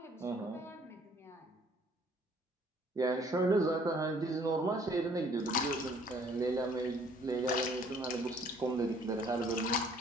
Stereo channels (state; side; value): normal; both; correlation 0.59